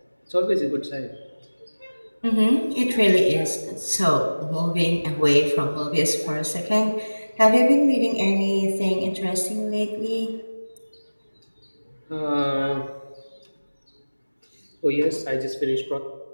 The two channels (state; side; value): inverted; both; correlation -1.00